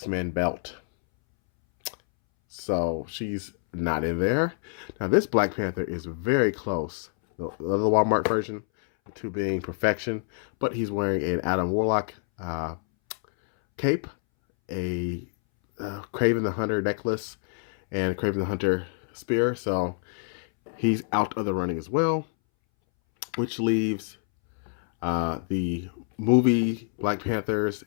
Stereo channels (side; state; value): right; silent; 60 dB below the other